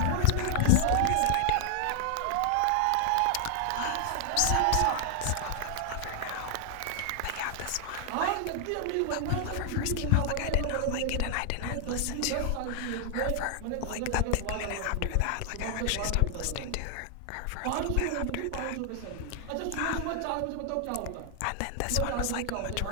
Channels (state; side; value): different; both; correlation 0.00